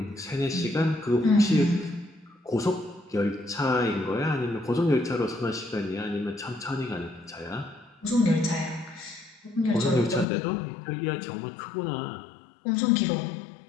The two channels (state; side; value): drops out; right; at 10.2 s